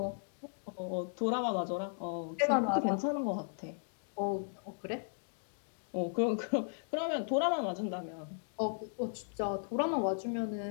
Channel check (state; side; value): silent; right; digital silence